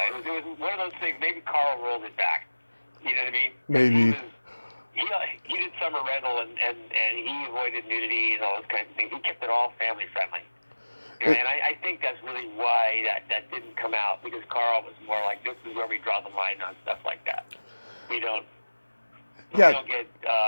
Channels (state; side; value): inverted; both; correlation -1.00